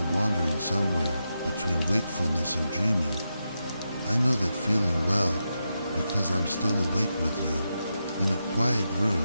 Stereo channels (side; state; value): both; inverted; correlation -0.87